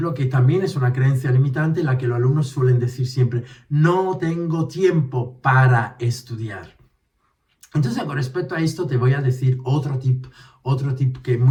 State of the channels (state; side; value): identical; both; correlation 1.00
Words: que también es una creencia limitante, en la que los alumnos suelen decir siempre, no tengo tiempo para estudiar. Entonces, con respecto a esto, te voy a decir otro tip que es